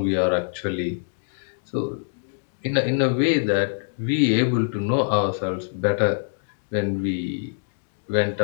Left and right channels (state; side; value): silent; right; digital silence